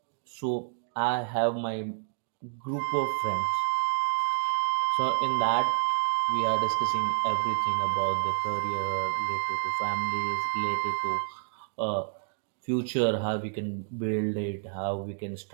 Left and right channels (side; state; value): left; silent; 57 dB below the other